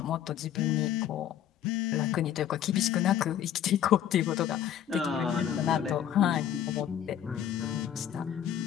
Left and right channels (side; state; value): right; quieter; 10.1 dB